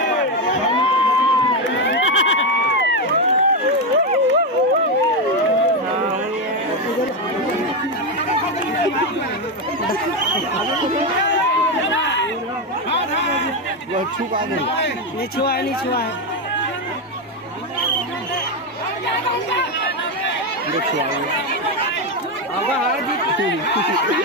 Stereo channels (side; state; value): both; normal; correlation 0.09